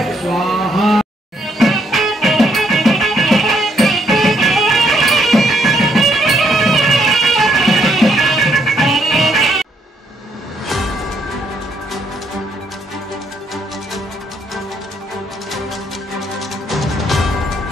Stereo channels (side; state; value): both; normal; correlation 0.72